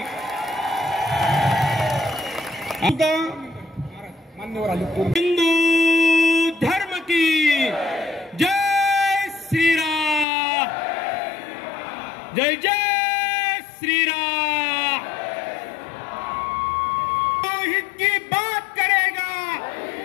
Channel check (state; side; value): drops out; right; at 10.2 s